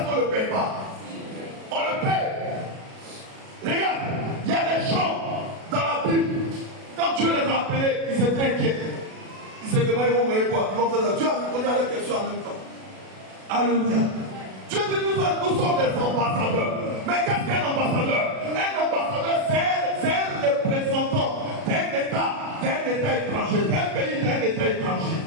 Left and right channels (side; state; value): left; late; 37 ms